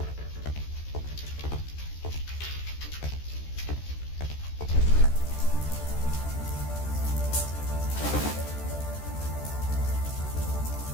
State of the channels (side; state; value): right; late; 14 ms